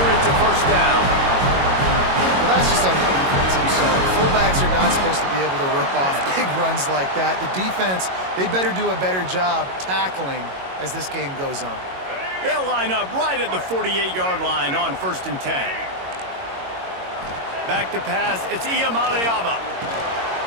it to 1st down. Well, that's just on the defense, I'm sorry. Fullbacks are not supposed to be able to rip off big runs like that. The defense, they better do a better job tackling as this game goes on. They'll line up right at the 48-yard line on 1st and 10. Back to pass, it's Iamaleava.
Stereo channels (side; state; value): left; late; 22 ms